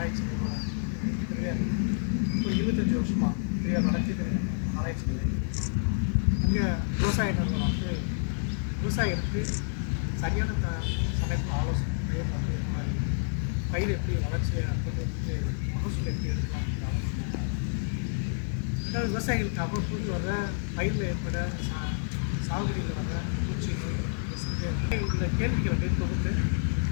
நிறுவனம் இப்போ 25 வருஷமாக பெரியார் நடத்திட்டு ஆராய்ச்சி நிலையம். அங்கே விவசாய நிறுவனம் வந்து விவசாயிகளுக்கு சரியான சமயத்தில் ஆலோசனை வந்து மாதிரி பயிர் எப்படி வளர்ச்சியை கொண்டு வந்து மகசூல் எப்படி எடுக்கலாம் அப்படின்னு ஆலோசனை. ரெண்டாவது விவசாயிகளுக்கு அவ்வப்போது வர பயிரில் ஏற்பட சாகுபடியில் வர பூச்சி நோய் உள்ள கேள்விகளை வந்து தொகுத்து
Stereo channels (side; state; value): right; silent; digital silence